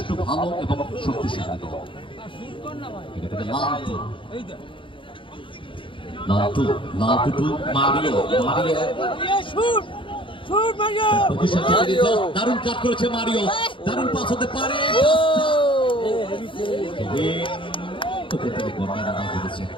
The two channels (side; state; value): right; late; 0.25 ms